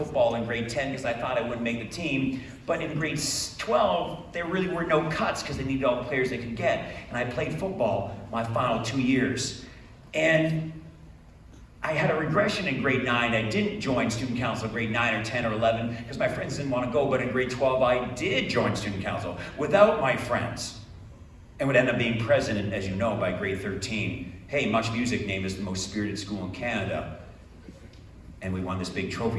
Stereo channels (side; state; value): both; identical; correlation 1.00